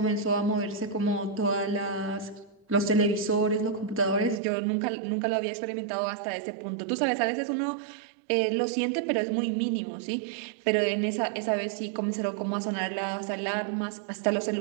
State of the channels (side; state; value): left; drops out; at 4.4 s